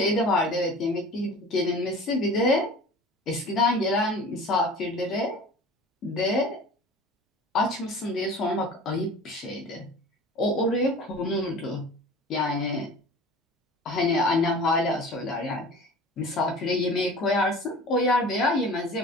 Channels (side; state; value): both; normal; correlation 0.40